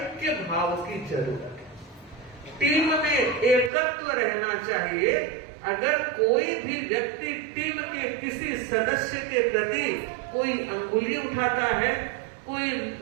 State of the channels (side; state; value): left; drops out; at 3.7 s